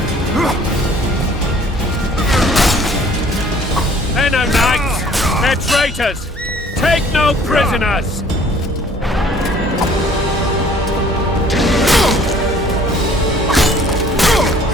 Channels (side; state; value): both; normal; correlation 0.55